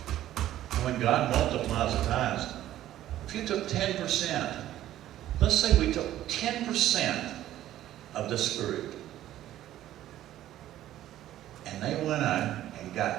And when God multiplies the tithes, if you took 10%, let's say we took 10% of this group, and they went out and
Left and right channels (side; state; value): left; quieter; 13.2 dB